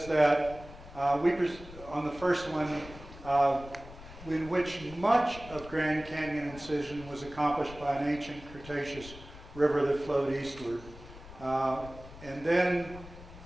that on the first one, in which much of Grand Canyon incision was accomplished by an ancient Cretaceous river that flowed eastward. And then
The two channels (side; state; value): left; noise; rumble, 16 dB below the sound